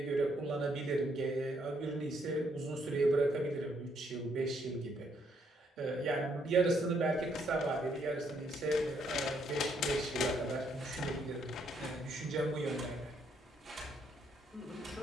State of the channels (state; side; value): normal; both; correlation 0.71